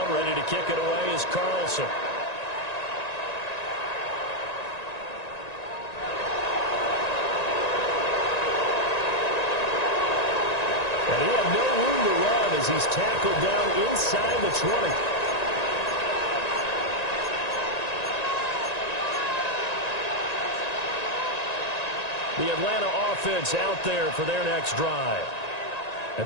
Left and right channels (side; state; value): right; late; 1.9 ms